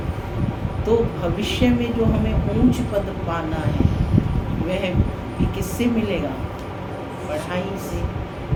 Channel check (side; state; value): both; identical; correlation 1.00